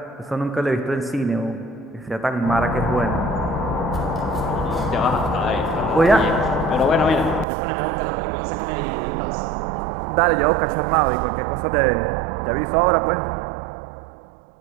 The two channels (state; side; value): drops out; left; at 7.5 s